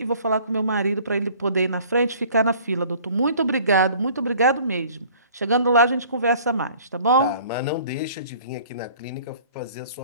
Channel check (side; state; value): both; inverted; correlation -0.51